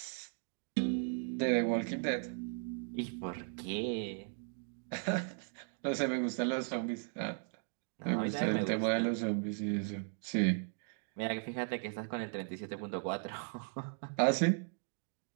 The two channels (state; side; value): silent; left; 53 dB below the other